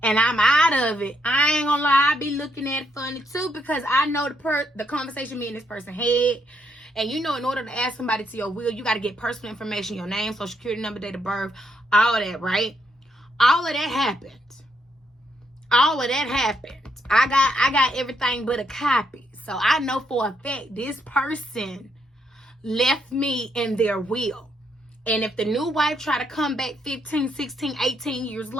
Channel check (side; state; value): both; normal; correlation 0.76